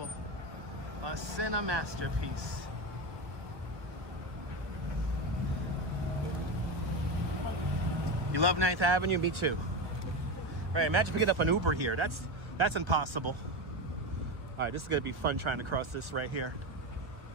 A cine masterpiece. You love 9th Avenue? Me too. All right, imagine picking up an Uber here. That's impossible. All right, this is gonna be fun trying to cross this right here.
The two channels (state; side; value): late; left; 1.4 ms